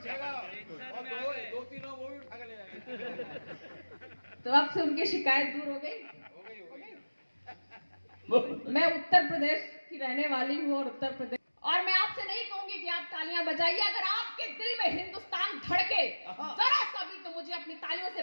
और दो तीनों वो भी उठा के ले जाएंगे। तो अब से उनकी शिकायत दूर हो गई। मैं उत्तर प्रदेश की रहने वाली हूँ और मैं आपसे नहीं कहूंगी कि आप तालियां बजाइए। अगर आपके दिल में हिंदुस्तान धड़के जरा सा भी तो मुझे अपनी तालियों से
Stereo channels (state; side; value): inverted; both; correlation -1.00